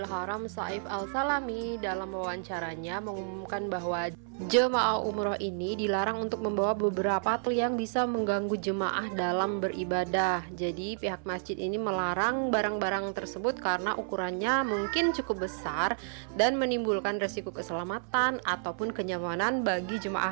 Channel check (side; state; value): left; silent; 57 dB below the other